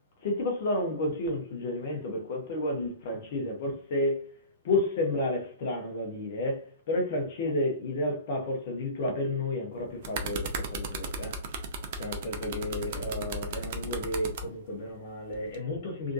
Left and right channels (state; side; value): inverted; both; correlation -0.37